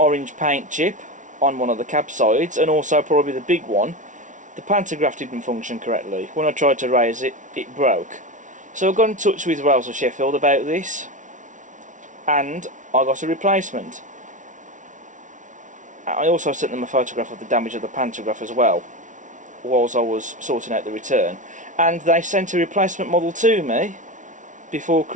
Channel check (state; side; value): late; left; 0.37 ms